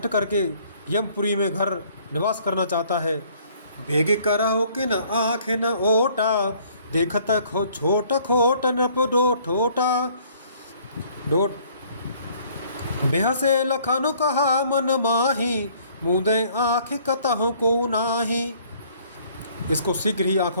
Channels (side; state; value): both; inverted; correlation -0.59